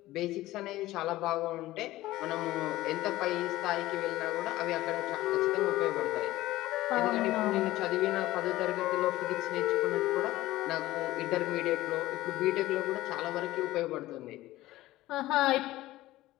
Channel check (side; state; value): right; quieter; 16.7 dB